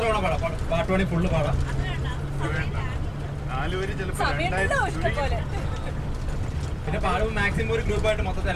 തവണ പാടാം? പാട്ട് വേണമെങ്കിൽ ഫുള്ള് പാടാം. 4 വരി ചിലപ്പോൾ പിന്നെ പാടുമ്പോൾ മാക്സിമം ഒരു ഗ്രൂപ്പായിട്ട് മൊത്തത്തിൽ,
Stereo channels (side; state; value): both; identical; correlation 1.00